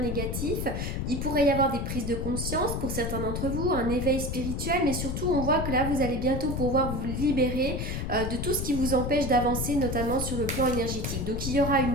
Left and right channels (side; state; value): left; noise; rumble, 3 dB below the sound